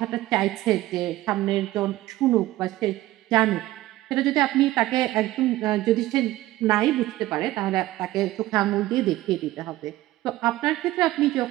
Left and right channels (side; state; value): left; quieter; 16.5 dB